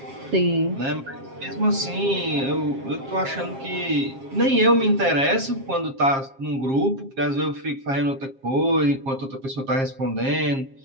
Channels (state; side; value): late; left; 7.4 ms